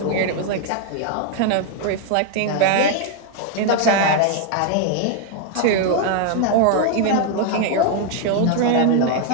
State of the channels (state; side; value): different; both; correlation 0.00